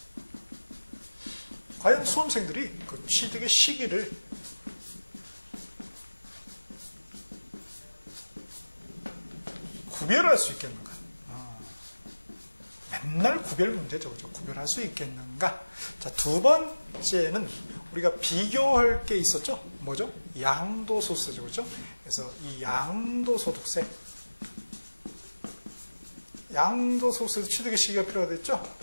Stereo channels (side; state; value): both; inverted; correlation -1.00